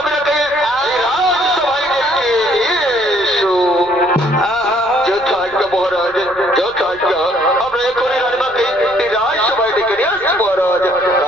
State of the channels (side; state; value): left; noise; rumble, 25 dB below the sound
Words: বেরোতে রাজসভায় ডেকে এসো। যথাজ্ঞা মহারাজ, যথাজ্ঞা। আমরা এখনই রানীমাকে রাজসভায় ডেকে নিয়ে আসছি মহারাজ,